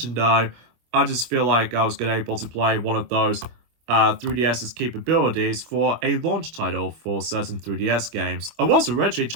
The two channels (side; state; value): left; late; 25 ms